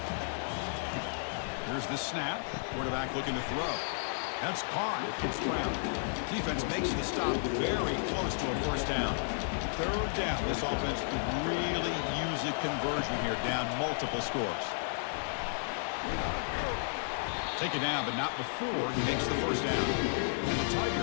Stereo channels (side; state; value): right; silent; digital silence